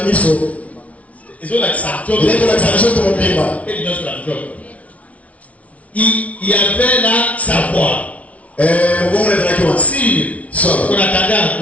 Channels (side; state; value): right; late; 0.066 ms